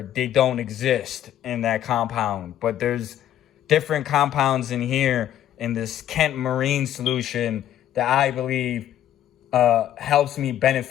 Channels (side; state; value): right; quieter; 11.5 dB